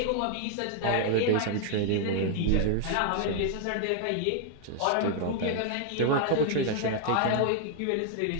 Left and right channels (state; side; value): different; both; correlation 0.00